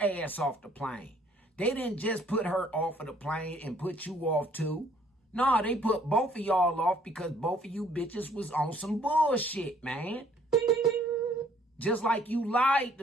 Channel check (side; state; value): both; normal; correlation 0.61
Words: ass off the plane. They didn't just put her off of the plane and put you off too. Nah, they put both of y'all off because both of you bitches was on some bullshit, man. Just like you lied